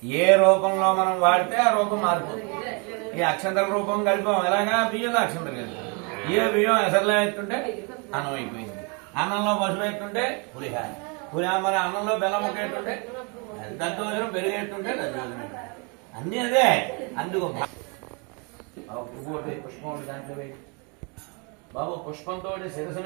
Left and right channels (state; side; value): quieter; left; 33.5 dB